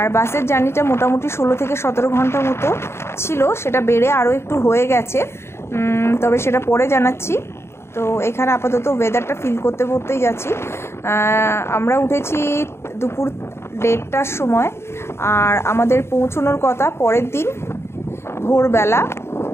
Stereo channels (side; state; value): right; late; 0.12 ms